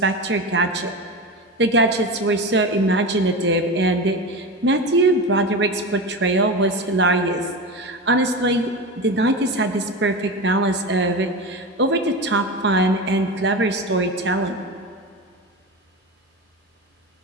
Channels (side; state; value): both; normal; correlation 0.23